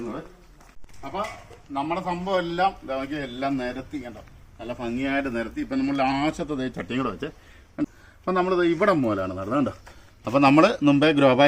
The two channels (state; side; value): identical; both; correlation 1.00